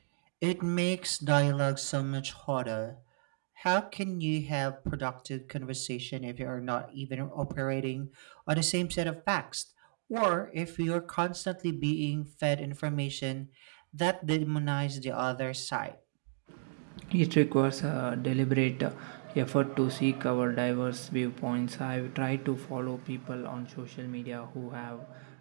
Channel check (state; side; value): silent; left; digital silence